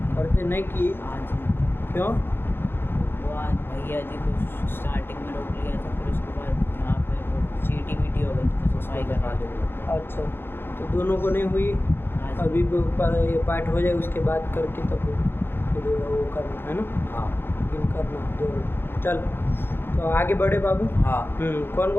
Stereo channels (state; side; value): late; right; 0.10 ms